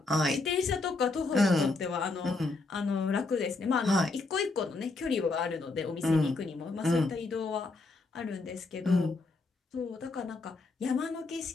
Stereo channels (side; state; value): right; quieter; 3.6 dB